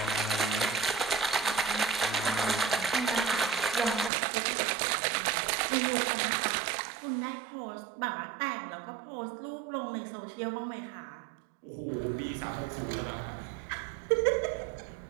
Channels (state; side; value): drops out; left; at 4.1 s